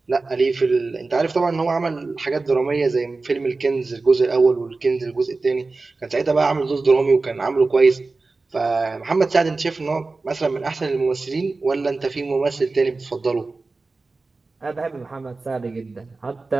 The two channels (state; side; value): quieter; left; 3.7 dB